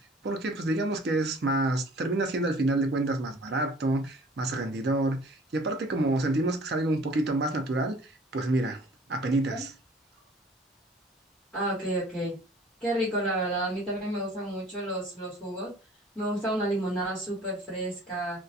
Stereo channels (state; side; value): normal; both; correlation 0.51